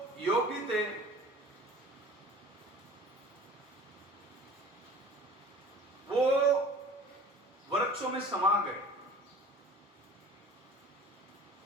योगी थे, वो वृक्षों में समा गए।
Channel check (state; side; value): normal; both; correlation 0.45